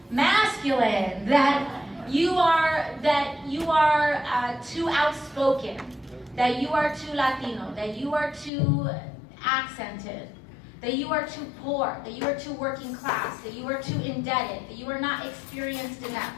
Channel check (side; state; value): right; drops out; at 8.5 s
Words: masculine, that you are too outspoken, that you are too Latino, that you are too accented, that you are too poor, that you are too working class, that you are too indebted, that you are not experienced enough.